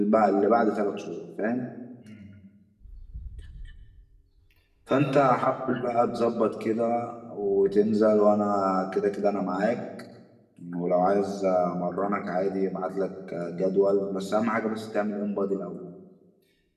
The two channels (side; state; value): both; identical; correlation 1.00